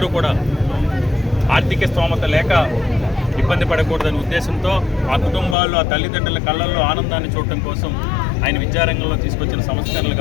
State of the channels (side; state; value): right; drops out; at 5.6 s